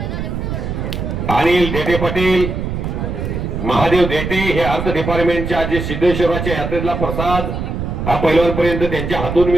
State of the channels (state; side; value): noise; right; rumble, 4 dB below the sound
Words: अनिल देते पाटील महादेव देटे हे अर्थ डिपार्टमेंटच्या जे सिद्धेश्वराच्या यात्रेतला प्रसाद हा पैलवानपर्यंत त्यांच्या हातून